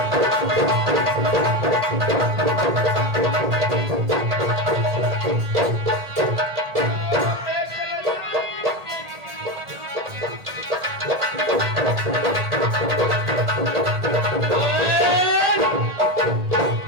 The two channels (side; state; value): left; late; 1.8 ms